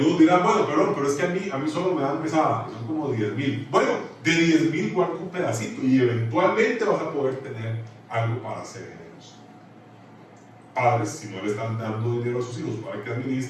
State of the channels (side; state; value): both; identical; correlation 1.00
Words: dirán: bueno, perdón, pero es que a mí solo me dan pesada, son como 10,000. Bueno, de 10,000 guarda un pedacito y eventualmente vas a poder tener algo para ser generoso. Padres, si no le están dando dinero a sus hijos para que